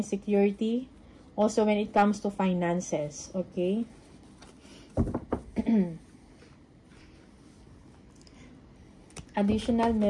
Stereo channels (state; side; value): identical; both; correlation 1.00